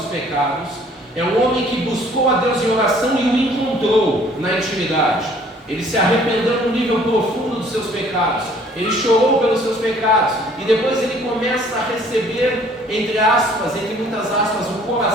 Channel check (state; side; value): normal; both; correlation 0.57